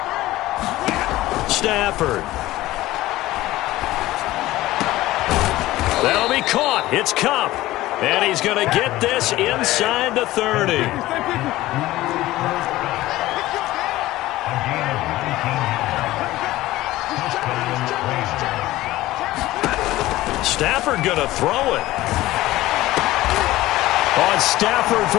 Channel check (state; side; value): quieter; right; 16.8 dB